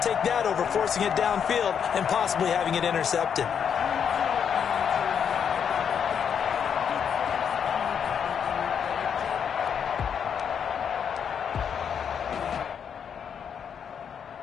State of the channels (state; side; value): quieter; right; 7.6 dB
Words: take that over forcing it downfield and possibly having it intercepted.